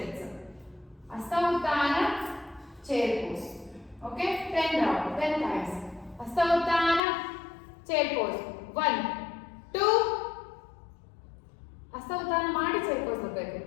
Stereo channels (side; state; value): right; drops out; at 7.0 s